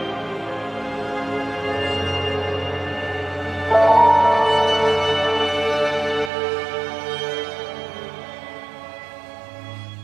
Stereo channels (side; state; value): left; drops out; at 6.3 s